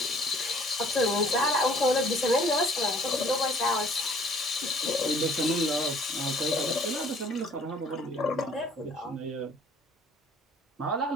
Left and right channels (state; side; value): normal; both; correlation 0.57